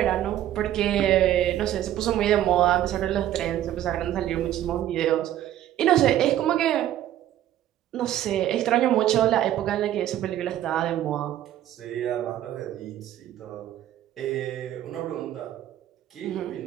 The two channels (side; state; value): left; quieter; 12.4 dB